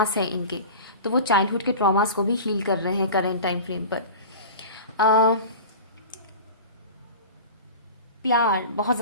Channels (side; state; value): both; inverted; correlation -0.34